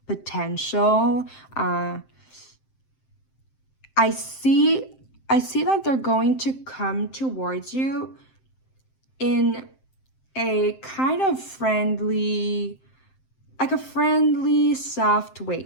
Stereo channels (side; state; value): right; late; 7.6 ms